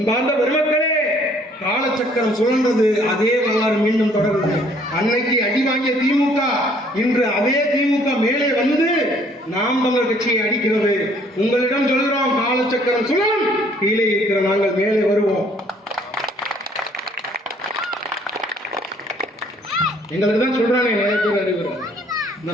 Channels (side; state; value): both; normal; correlation 0.60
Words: பெருமக்களே, காலச்சக்கரம் சுழன்றது, அதே வரலாறு மீண்டும் தொடருது. அன்னைக்கு அடி வாங்கிய திமுக இன்று அதே திமுக மேலே வந்து நாம் தமிழர் கட்சியை அடிக்கிறது. உங்களிடம் சொல்கிறோம், காலச்சக்கரம் சுழலும், கீழே இருக்கிற நாங்கள் மேலே வருவோம். எங்களுக்கு தான் சொல்றானே நிறைய பேர் அறிவுறாங்க. இந்த